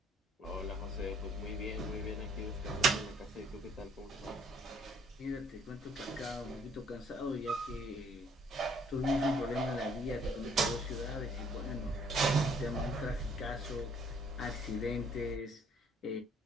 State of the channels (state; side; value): normal; both; correlation 0.62